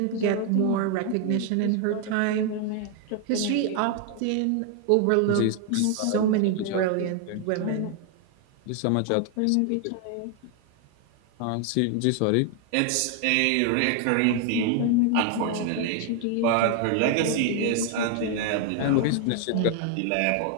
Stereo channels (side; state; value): both; different; correlation 0.00